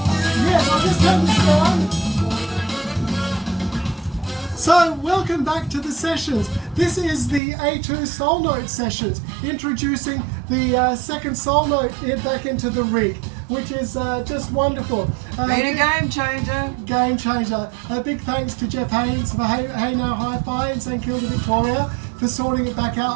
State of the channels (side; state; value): left; drops out; at 7.4 s